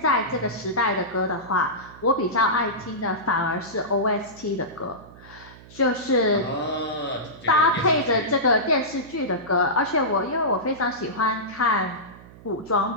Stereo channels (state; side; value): noise; right; hum, 20 dB below the sound